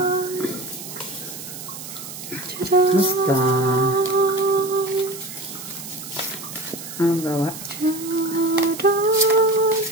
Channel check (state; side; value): noise; right; hiss, 11 dB below the sound